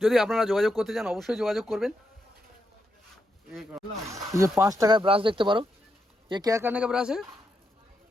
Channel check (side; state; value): both; normal; correlation 0.82